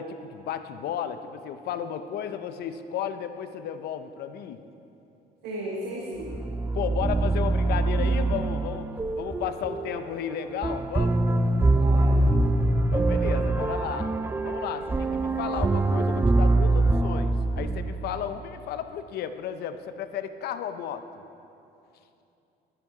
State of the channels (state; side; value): normal; both; correlation 0.78